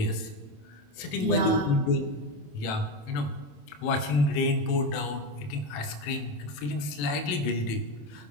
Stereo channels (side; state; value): right; late; 27 ms